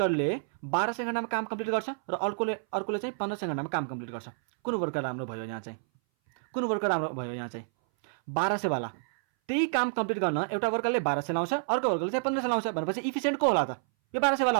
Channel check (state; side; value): silent; left; 58 dB below the other